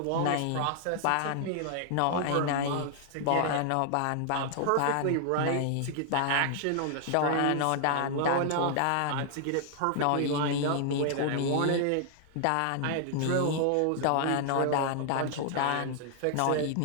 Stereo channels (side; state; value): both; different; correlation 0.00